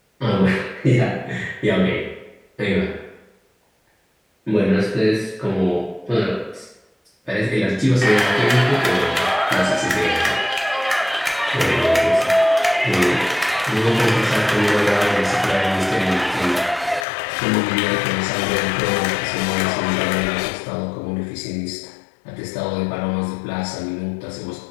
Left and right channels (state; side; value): drops out; right; at 17.1 s